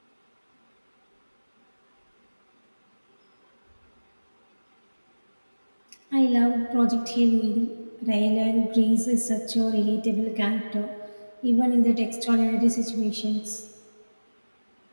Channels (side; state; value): both; inverted; correlation -1.00